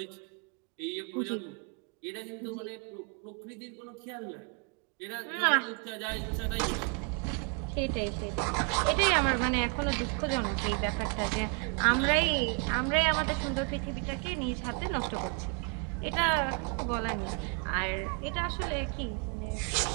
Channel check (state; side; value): quieter; left; 34.6 dB